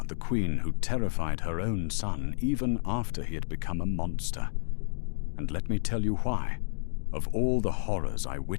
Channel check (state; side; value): silent; right; digital silence